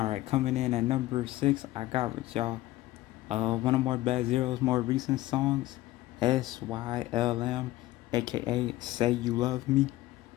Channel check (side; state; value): right; quieter; 16.6 dB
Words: right, coming in at number 6, I got with y'all one of more Bad Zero's more recent songs, SYLM, aka Say You Love Me.